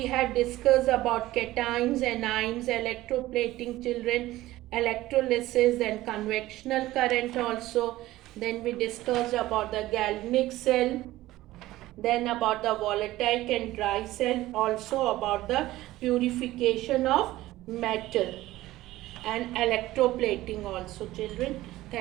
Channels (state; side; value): quieter; left; 16.5 dB